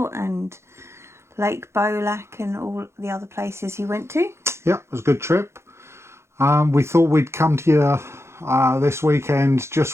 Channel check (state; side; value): late; left; 0.13 ms